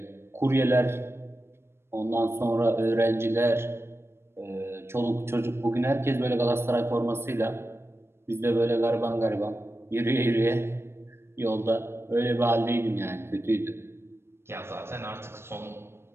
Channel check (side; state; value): left; late; 0.12 ms